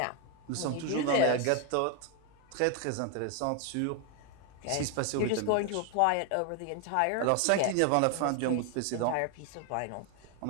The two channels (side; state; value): both; different; correlation 0.01